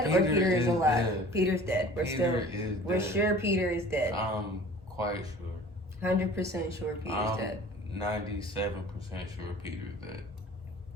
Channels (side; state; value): both; normal; correlation 0.45